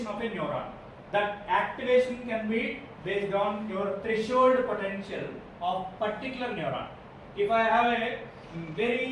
of a neuron. That activation can be based on your threshold potential of particular neuron. If I have a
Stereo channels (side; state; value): both; identical; correlation 1.00